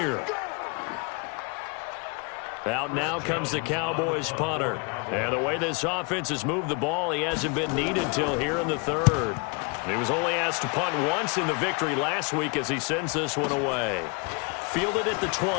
Out now comes the Cowboys punter. And the way this offense has moved the ball, he hasn't been needed till here in the 3rd. He was only asked to punt once in the victory last week as he sends this one away. Fielded at the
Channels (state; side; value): quieter; right; 32.5 dB